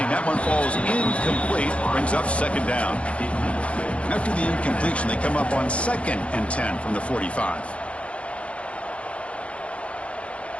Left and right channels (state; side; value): late; right; 0.062 ms